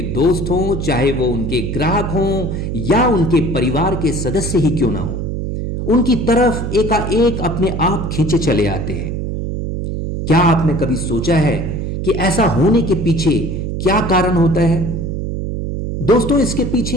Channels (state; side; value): noise; right; hum, 3 dB below the sound